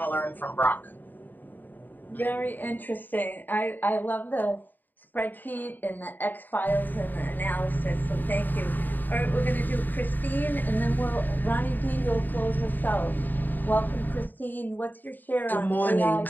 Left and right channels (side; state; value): right; late; 0.089 ms